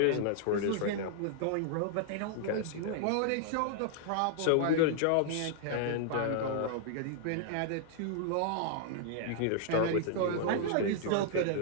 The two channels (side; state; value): both; different; correlation -0.01